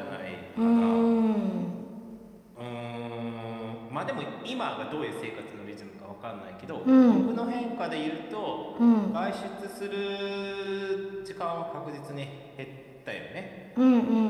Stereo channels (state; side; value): identical; both; correlation 1.00